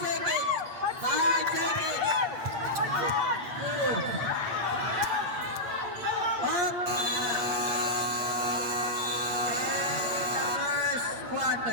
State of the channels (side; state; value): left; late; 8.5 ms